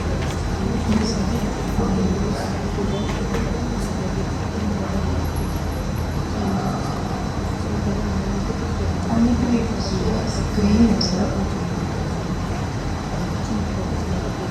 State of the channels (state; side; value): identical; both; correlation 1.00